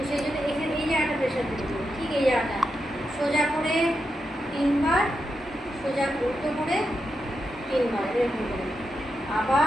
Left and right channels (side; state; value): both; normal; correlation 0.86